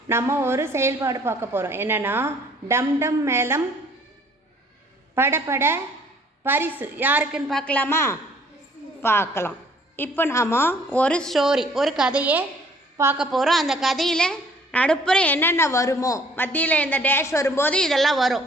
நம்ம ஒரு செயல்பாடு பார்க்க போகிறோம். என்னென்னா, டம் டம் மேளம் படபட பரிசு யாருக்குன்னு பார்க்கலாமா? பார்க்கலாம். இப்போ நாம் ஒரு ஸ்டோரி, ஒரு கதையை பார்க்க போகிறோம். அந்த கதையில் நடுப்புற என்னென்ன வருமோ, மத்தியில் இந்த டேஷ் வரும்போது இதெல்லாம்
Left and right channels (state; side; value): normal; both; correlation 0.58